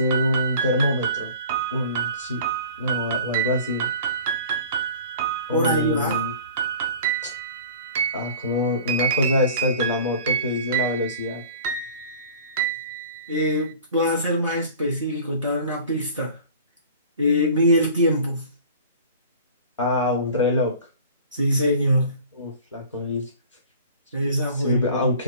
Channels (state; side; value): inverted; both; correlation -0.44